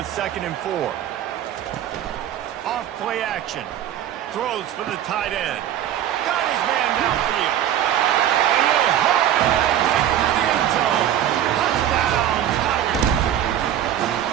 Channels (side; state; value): left; quieter; 10.9 dB